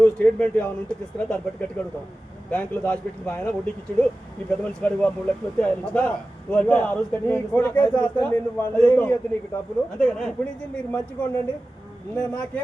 స్టేట్మెంట్ ఏమైనా ఉంటే తీసుకురా దాన్ని బట్టి గట్టిగా అడుగుతావు బ్యాంకులో దాచిపెట్టిన ఆయన వడ్డీకి ఇచ్చాడు ఈ పెద్ద మనిషి కాడికి 3 లక్షలు వస్తే ఆయన నువ్వు అంటే ఆ రోజు నీకు డబ్బులు అంతేగా ఇప్పుడు నుంచి మీరు మంచిగా ఉండండి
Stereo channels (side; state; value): both; normal; correlation 0.95